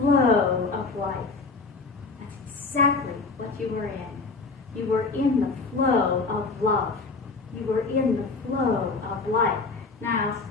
of life. That's exactly what you were in. You were in the flow of love. You were in the flow of life. Now,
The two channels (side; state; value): right; quieter; 4.0 dB